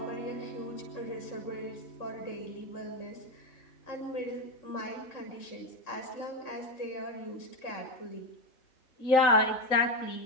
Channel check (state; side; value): late; right; 3.9 ms